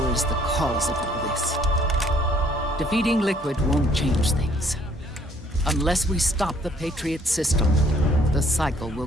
is the cause of all this. Defeating Liquid won't change things. Unless we stop the Patriot system, the cycle will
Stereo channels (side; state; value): both; normal; correlation 0.62